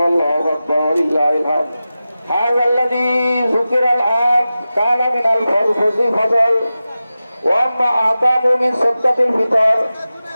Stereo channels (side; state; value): both; inverted; correlation -0.94